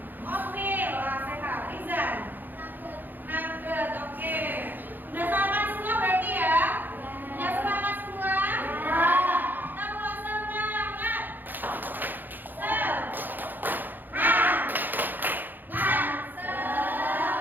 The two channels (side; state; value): left; late; 0.088 ms